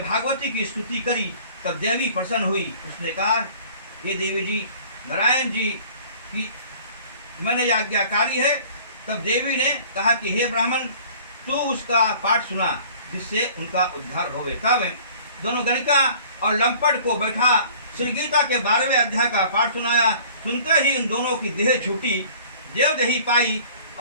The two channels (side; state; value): both; inverted; correlation -0.49